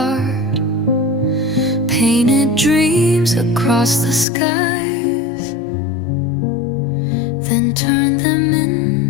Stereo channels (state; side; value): drops out; right; at 4.2 s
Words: Painted dreams across the skies, then turned them